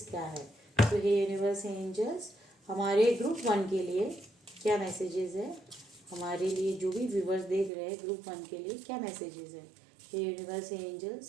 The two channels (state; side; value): drops out; left; at 7.7 s